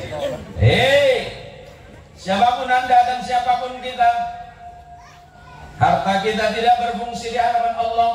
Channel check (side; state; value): both; identical; correlation 1.00